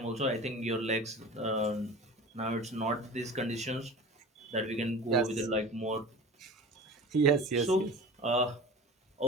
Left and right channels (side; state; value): both; normal; correlation 0.37